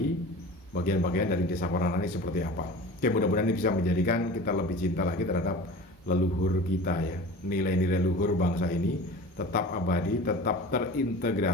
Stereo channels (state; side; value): normal; both; correlation 0.37